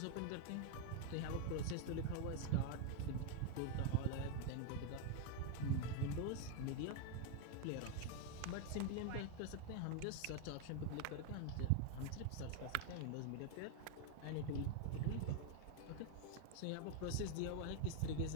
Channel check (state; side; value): different; both; correlation 0.01